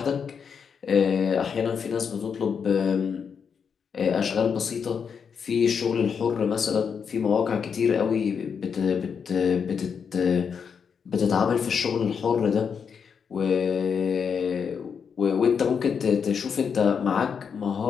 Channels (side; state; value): right; quieter; 6.6 dB